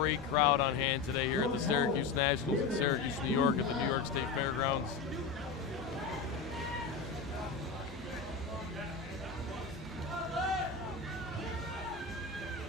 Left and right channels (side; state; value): right; quieter; 4.9 dB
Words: crowd on hand today here at the Syracuse Nationals in Syracuse, New York at the New York State Fairgrounds.